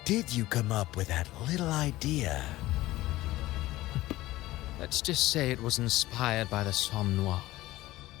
did you come up with that little idea? Let's just say it was inspired by the Somme Noir.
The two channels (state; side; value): quieter; right; 17.2 dB